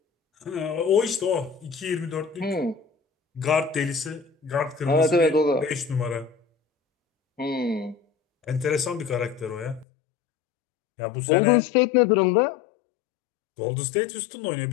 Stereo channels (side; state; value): right; drops out; at 9.9 s